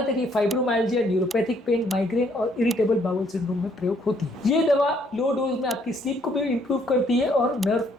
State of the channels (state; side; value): normal; both; correlation 0.67